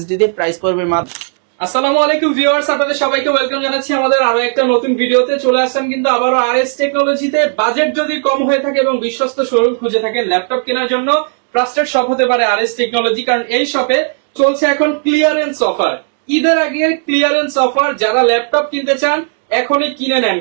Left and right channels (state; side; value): silent; left; 59 dB below the other